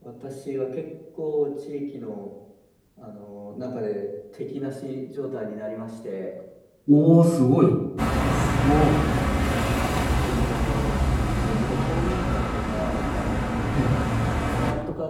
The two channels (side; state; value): both; identical; correlation 1.00